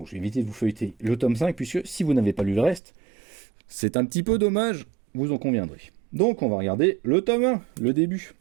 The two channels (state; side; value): drops out; left; at 2.8 s